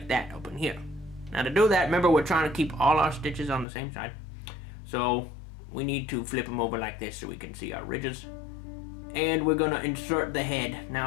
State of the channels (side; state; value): right; drops out; at 3.7 s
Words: that, up in here. Now to do that, remember we're trying to keep all our stitches on the same side. So we need to flip them over like this so we can see our ridges. And we're gonna insert the head.